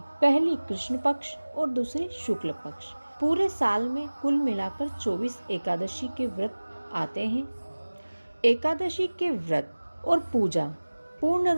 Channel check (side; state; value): both; inverted; correlation -1.00